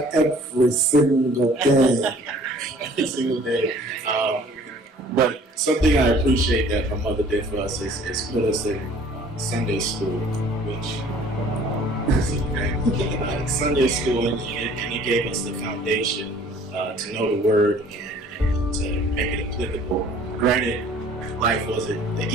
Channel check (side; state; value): both; normal; correlation 0.53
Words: every single day. every single day. But something I appreciate that my mother did for us is put us in Sunday school, which Sunday school, and it gave us the foundation to know the word and to make it applicable. Granted, life wasn't the